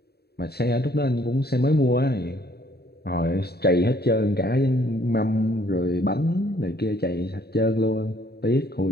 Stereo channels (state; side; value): late; right; 0.47 ms